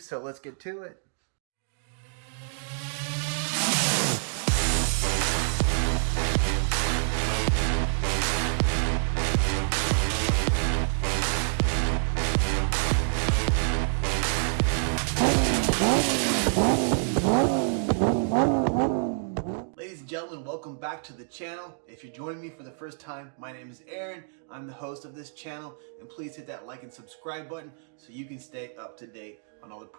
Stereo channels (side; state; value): left; silent; digital silence